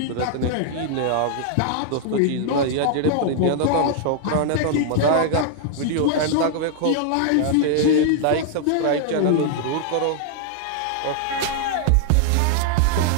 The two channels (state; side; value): different; both; correlation 0.00